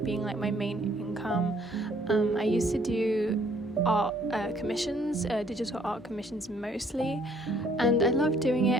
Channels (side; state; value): both; normal; correlation 0.63